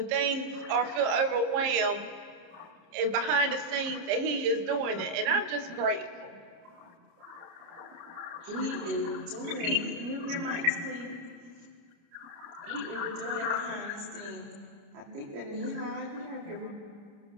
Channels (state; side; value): late; left; 29 ms